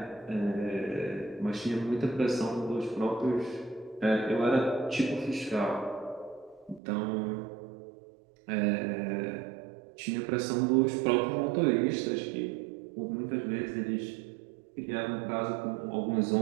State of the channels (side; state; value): left; drops out; at 6.8 s